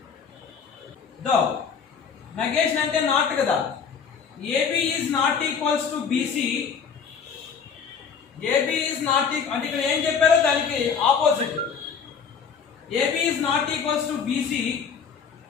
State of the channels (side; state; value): right; quieter; 6.5 dB